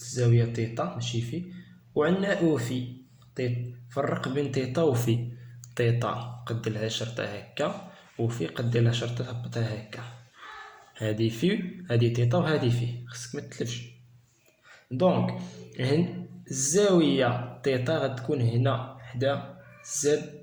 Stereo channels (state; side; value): identical; both; correlation 1.00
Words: تيتا ماشي في، وعندنا او في تيتا. فرق بين تيتا وفي. تيتا قد لها شرطه هكا، وفي قد لها شرطه هبطها هكا. هادي في، هادي تيتا، وهادي في، خصك ما تتلفش. دونك الزاويه تيتا غتكون هنا حدا زد،